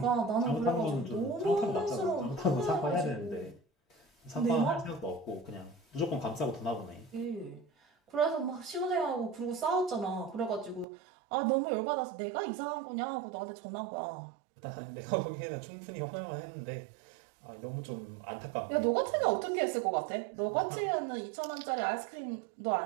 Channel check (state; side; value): drops out; left; at 10.9 s